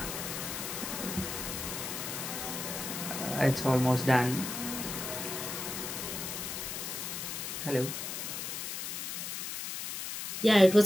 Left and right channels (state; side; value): noise; left; hiss, 5 dB below the sound